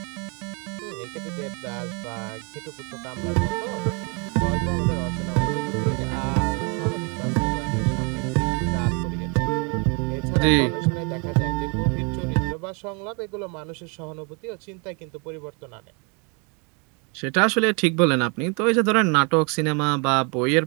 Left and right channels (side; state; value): left; quieter; 33.2 dB